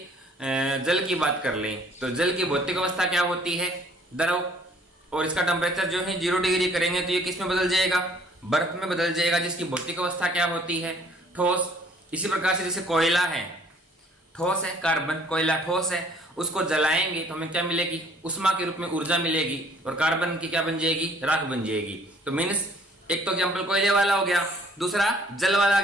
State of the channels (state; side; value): normal; both; correlation 0.58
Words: जल की बात कर लें तो जल की भौतिक अवस्था क्या होती है? द्रव। और इसका टेम्परेचर जो है 0 डिग्री करेंगे तो ये किस में बदल जाएगा? बर्फ में बदल जाएगा, जिसकी भौतिक अवस्था क्या होती है? ठोस। इसी प्रकार से जैसे कोयला है, ठोस है, कार्बन कोयला ठोस है, उसको जलाएंगे तो हमें क्या मिलेगी? उष्मा के रूप में ऊर्जा मिलेगी और कार्बन की क्या बन जाएगी? राख बन जाएगी। तो मीन्स एक तो एग्जाम्पल कोयले वाला हो गया, दूसरा जल वाला